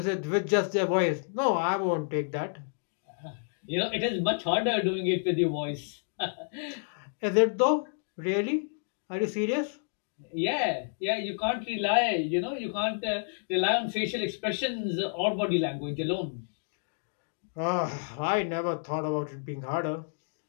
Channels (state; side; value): silent; right; digital silence